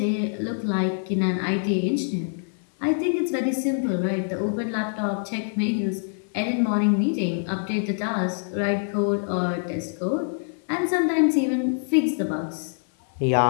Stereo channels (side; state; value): right; silent; 61 dB below the other